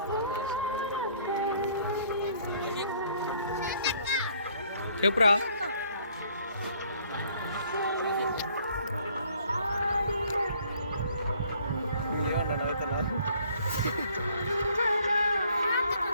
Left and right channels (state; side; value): inverted; both; correlation -0.61